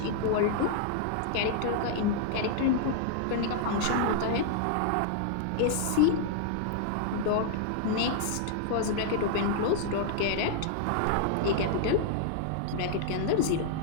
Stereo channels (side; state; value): both; different; correlation -0.01